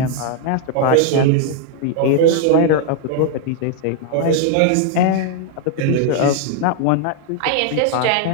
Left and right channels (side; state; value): both; different; correlation 0.00